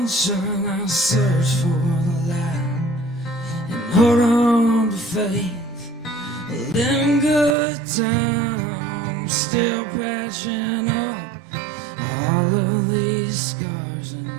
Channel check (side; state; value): left; drops out; at 7.6 s